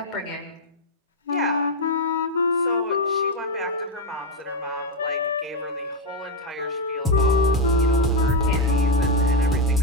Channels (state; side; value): normal; both; correlation 0.06